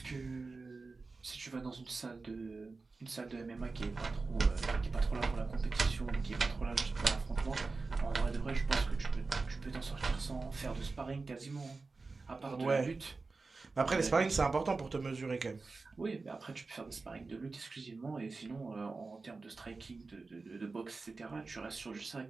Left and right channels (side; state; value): left; quieter; 3.9 dB